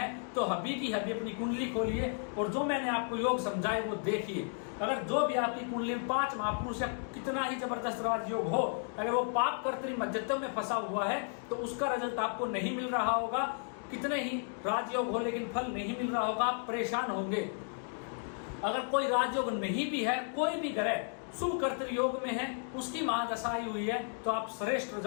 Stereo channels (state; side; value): silent; right; 55 dB below the other